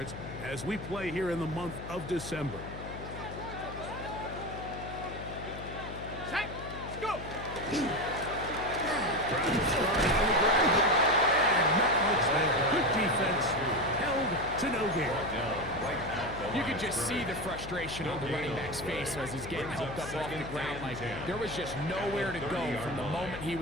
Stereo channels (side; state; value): left; noise; hum, 10 dB below the sound